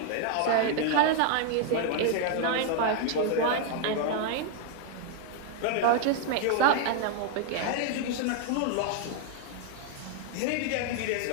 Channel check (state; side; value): different; both; correlation 0.00